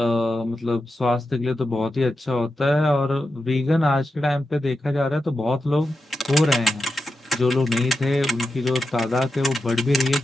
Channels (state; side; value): normal; both; correlation 0.89